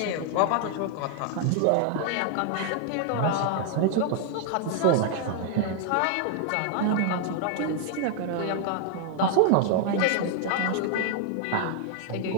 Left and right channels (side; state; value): both; different; correlation 0.00